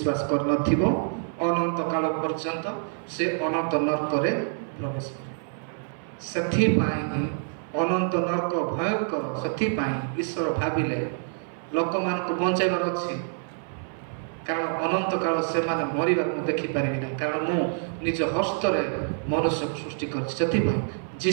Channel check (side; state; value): left; silent; 57 dB below the other